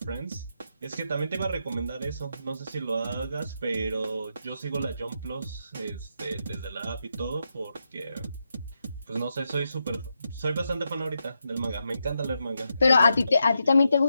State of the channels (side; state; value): both; inverted; correlation -0.85